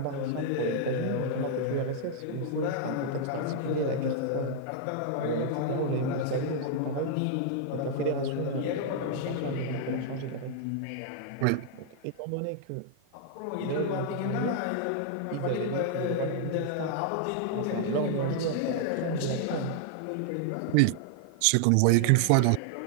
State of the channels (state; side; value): different; both; correlation -0.01